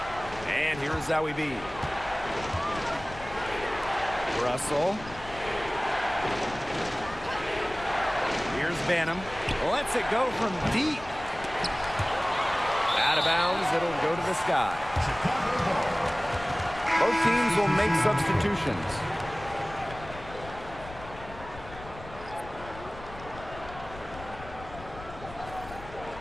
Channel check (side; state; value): left; noise; rumble, 15 dB below the sound